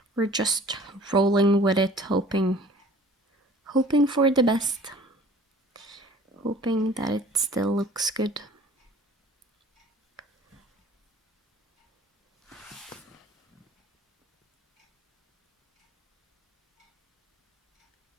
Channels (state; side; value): normal; both; correlation 0.49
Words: we're just rolling with it, hoping for the best, hoping that it still looks good.